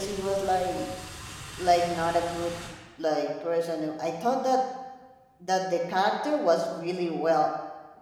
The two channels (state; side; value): identical; both; correlation 1.00